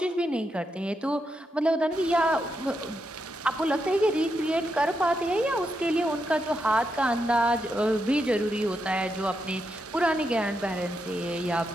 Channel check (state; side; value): normal; both; correlation 0.83